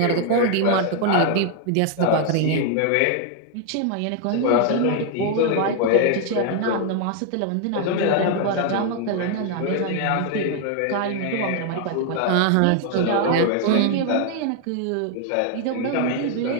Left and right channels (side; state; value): both; different; correlation 0.00